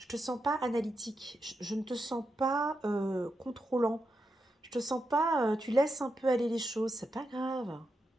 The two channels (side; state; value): both; normal; correlation 0.86